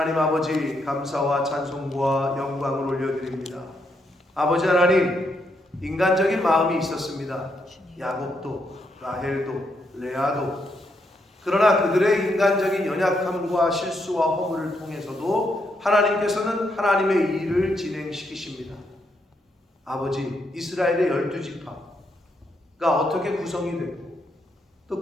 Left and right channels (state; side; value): normal; both; correlation 0.78